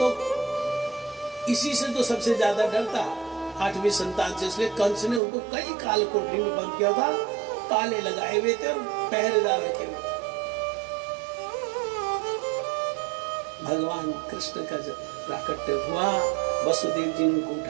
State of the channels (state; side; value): drops out; left; at 5.2 s